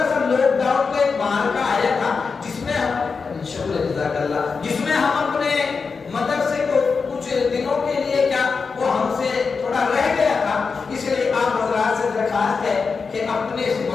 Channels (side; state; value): right; quieter; 5.0 dB